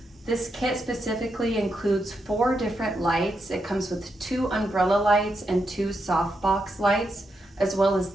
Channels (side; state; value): both; normal; correlation 0.84